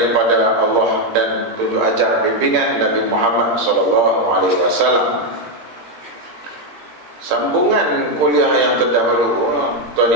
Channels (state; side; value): late; left; 17 ms